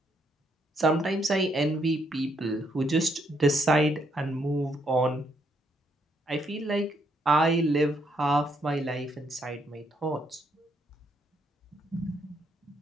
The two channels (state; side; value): normal; both; correlation 0.74